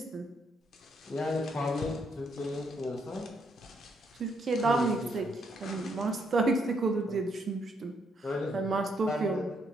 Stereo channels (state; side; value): normal; both; correlation 0.74